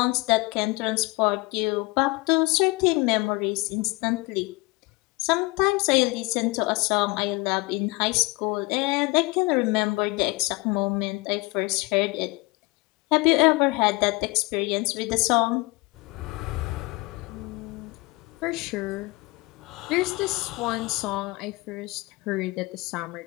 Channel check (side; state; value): right; quieter; 25.2 dB